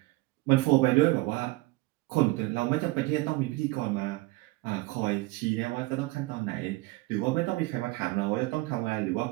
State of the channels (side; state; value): left; quieter; 21.5 dB